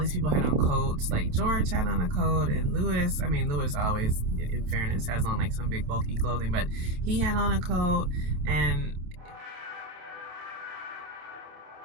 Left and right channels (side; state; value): left; late; 28 ms